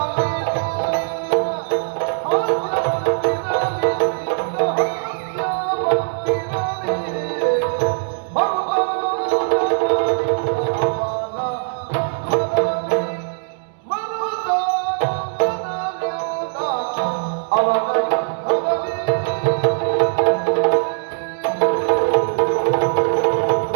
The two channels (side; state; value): left; silent; digital silence